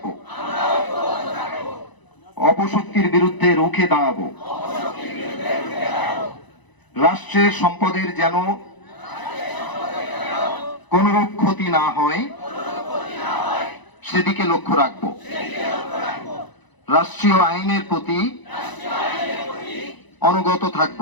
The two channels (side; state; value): right; late; 1.0 ms